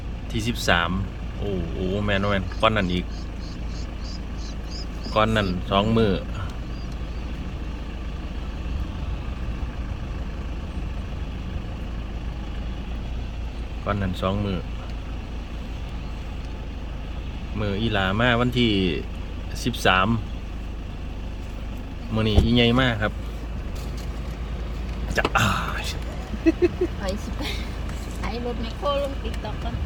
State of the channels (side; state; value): both; identical; correlation 1.00